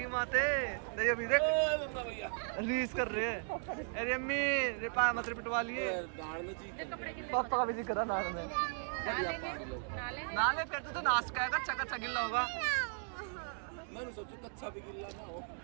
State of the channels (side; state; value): left; silent; 53 dB below the other